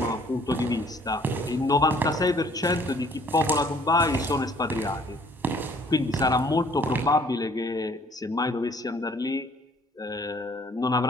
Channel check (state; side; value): normal; both; correlation 0.58